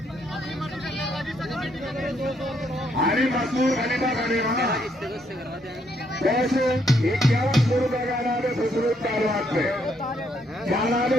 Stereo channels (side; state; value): both; normal; correlation 0.73